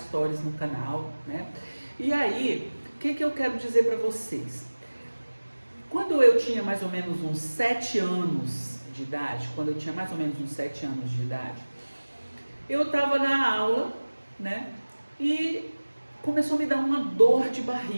no canal, né? E aí, o que eu quero dizer para vocês? Quando eu tinha mais ou menos uns 7 anos de idade, eu estava na aula, né? E começou a me dar uma dor de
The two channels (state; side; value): inverted; both; correlation -1.00